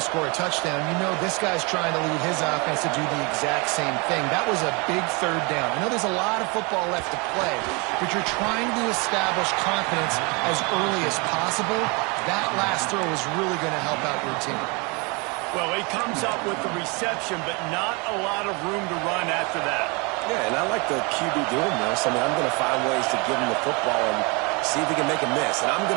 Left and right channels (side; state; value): left; quieter; 29.7 dB